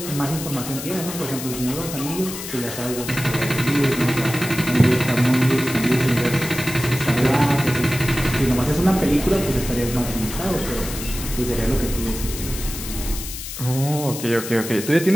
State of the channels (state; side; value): noise; left; hiss, 9 dB below the sound